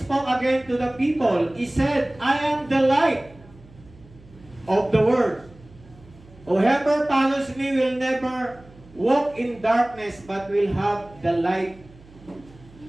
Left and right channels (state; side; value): noise; right; hum, 24 dB below the sound